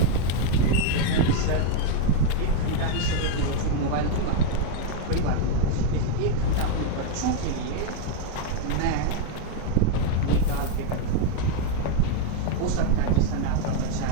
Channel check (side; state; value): both; different; correlation 0.01